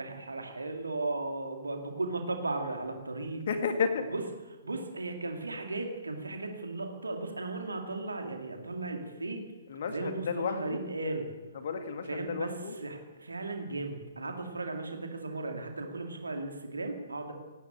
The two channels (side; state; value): both; inverted; correlation -0.72